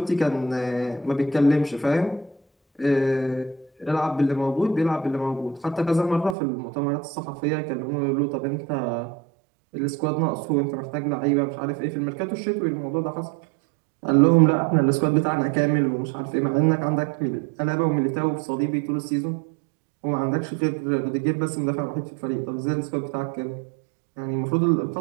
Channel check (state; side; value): drops out; left; at 6.4 s